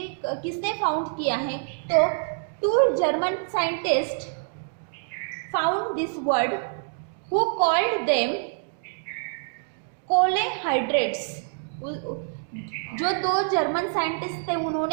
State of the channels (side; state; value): left; silent; digital silence